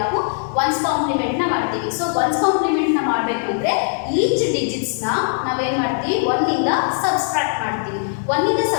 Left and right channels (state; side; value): silent; right; digital silence